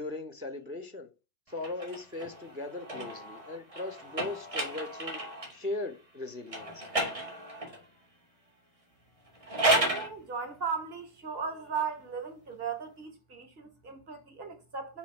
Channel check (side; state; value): left; late; 1.6 ms